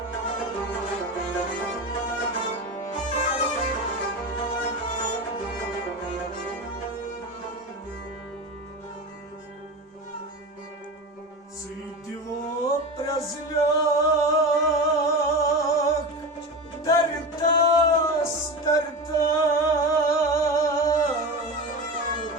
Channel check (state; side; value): normal; both; correlation 0.25